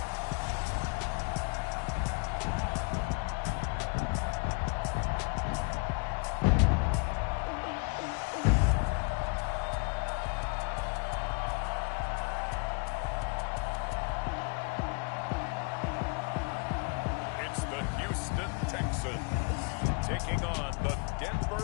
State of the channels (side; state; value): right; quieter; 33.3 dB